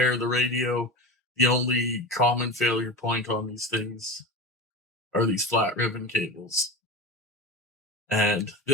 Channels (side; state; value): both; normal; correlation 0.28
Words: of the radio, the only common failure point on these things are these flat ribbon cables. And